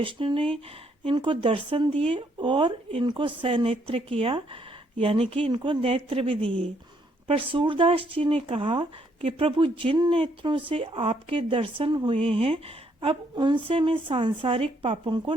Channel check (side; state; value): both; normal; correlation 0.71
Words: ने इनको दर्शन दिए और इनको सनेत्र किया, यानी कि इनको नेत्र भी दिए। पर सूरदास जी ने कहा कि प्रभु, जिन नेत्रों से आपके दर्शन हुए हैं, अब उनसे मैं सांसारिक पापों को